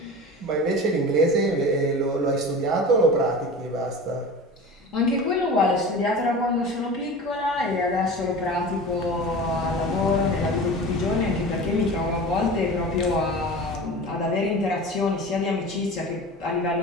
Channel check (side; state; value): both; normal; correlation 0.34